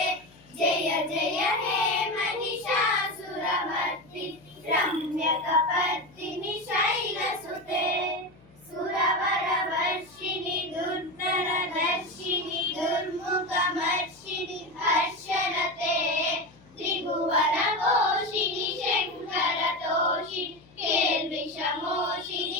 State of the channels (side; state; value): left; noise; hum, 26 dB below the sound